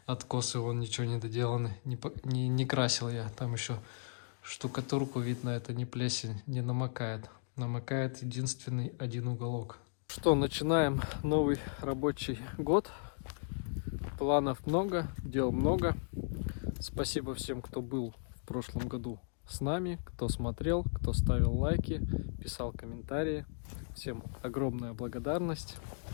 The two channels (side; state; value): right; silent; digital silence